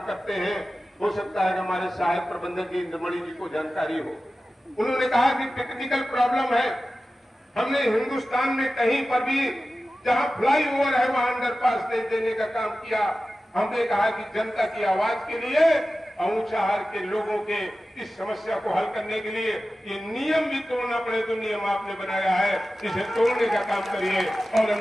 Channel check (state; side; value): normal; both; correlation 0.95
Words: करते हैं। हो सकता है कि हमारे सहायक प्रबंधक जी इंद्रमणि जी को जानकारी हो। उन्होंने कहा कि टेक्निकल प्रॉब्लम है। हमने हिंदुस्तान में कहीं पर भी जहां फ्लाईओवर है वहां अंडरपास नहीं देने का काम किया। हमने कहा कि जनता की आवाज के लिए ऊंचाहार के लोगों के इस समस्या को हल करने के लिए ये नियम भी तोड़ना पड़े तो नियम आपने बनाया है, इसे तोड़ने का काम करिए और